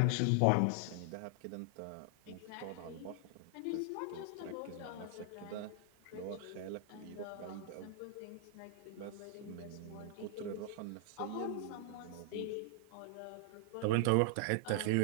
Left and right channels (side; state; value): both; different; correlation 0.00